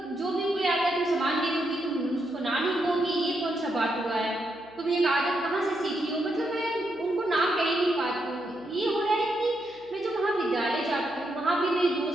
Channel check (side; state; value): right; noise; hum, 28 dB below the sound